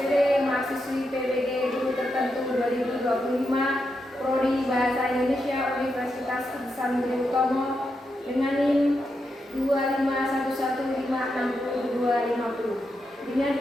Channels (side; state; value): both; normal; correlation 0.85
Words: mahasiswi PBG Guru Tertentu 2025, Prodi Bahasa Indonesia Universitas Ihsan Budi Utomo dengan NIM 251156250. Dengan